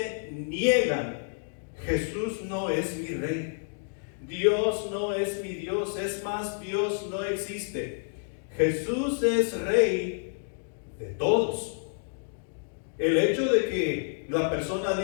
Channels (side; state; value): right; silent; digital silence